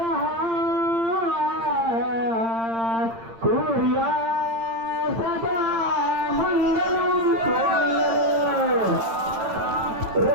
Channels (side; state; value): left; late; 8.8 ms